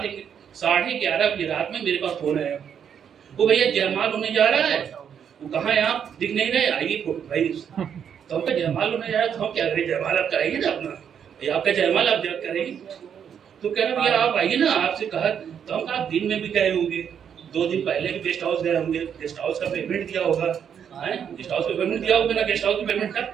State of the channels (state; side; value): quieter; left; 8.1 dB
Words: 11:30 बजे रात में मेरे पास फोन आया, वो भैया जयमाल होने जा रहा है। वो कहाँ है, आप दिख नहीं रहे, आइए भाई। तो हमका जयमाल होने जा रहा है, तो हम क्या करें, जयमाल आप कराइए ना अपना, भैया आपका जयमाल आप जब करेंगे। तो कह रहा भैया आप आइए ना, आपसे कहा। तो हम कहा दिन में भी गए होंगे, 2 दिन पहले भी गेस्ट हाउस गए होंगे, गेस्ट हाउस का पेमेंट दिया होगा, गेस्ट हाउस का पेमेंट दिया होगा ना, गेस्ट हाउस के पेमेंट का